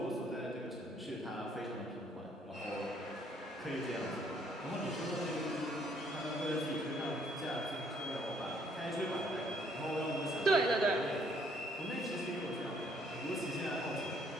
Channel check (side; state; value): both; normal; correlation 0.65